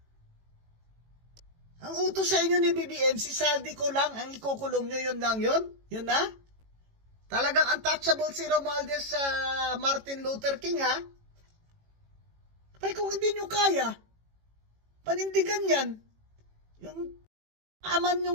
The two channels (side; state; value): left; late; 18 ms